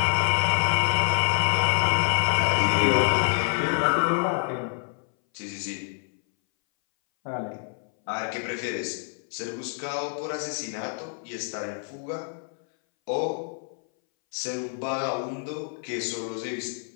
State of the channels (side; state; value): right; silent; 60 dB below the other